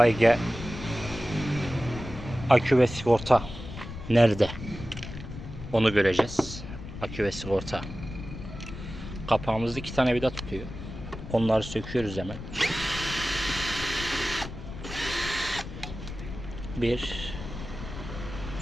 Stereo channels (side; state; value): left; noise; rumble, 10 dB below the sound